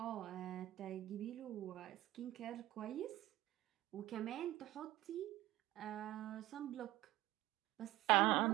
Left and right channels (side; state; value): left; quieter; 16.2 dB